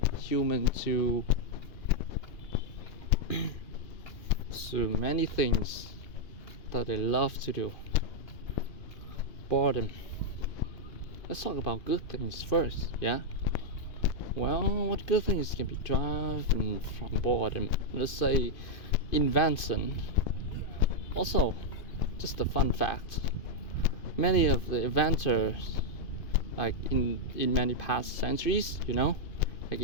human to many things that they love to do. Boredom. Let's talk about good things first, yeah? Well, what good things can be driven from boredom? Let's say invention. Also, just a fun fact, many of the inventors, like in many past centuries, like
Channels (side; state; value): right; late; 2.8 ms